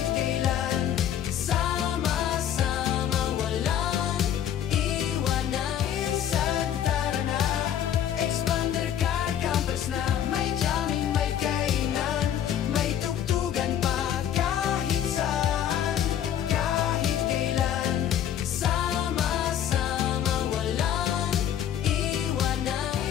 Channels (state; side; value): quieter; right; 10.0 dB